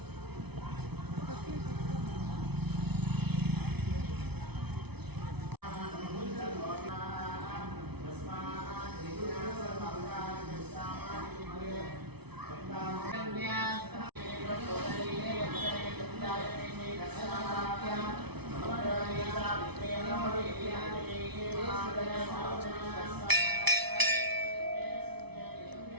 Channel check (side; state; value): left; late; 0.99 ms